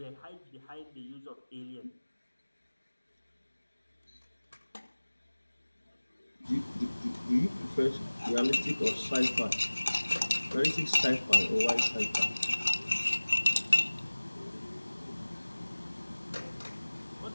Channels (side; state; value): both; inverted; correlation -1.00